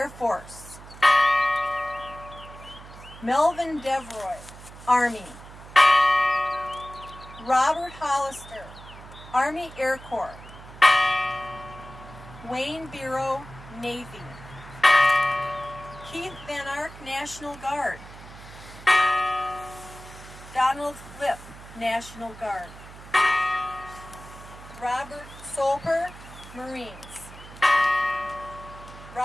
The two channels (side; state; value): right; noise; hum, 17 dB below the sound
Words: Force. Melvin Devroy, Army. Robert Hollister, Army Air Corps. Wayne Biro, Navy. Keith Van Ark, National Guard. Donald Flip, National Guard. Robert Solper, Marines.